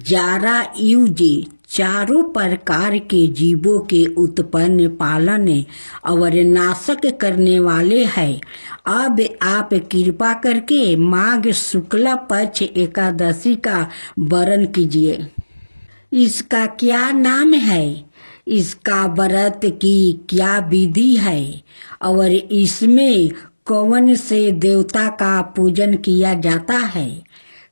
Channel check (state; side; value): inverted; both; correlation -1.00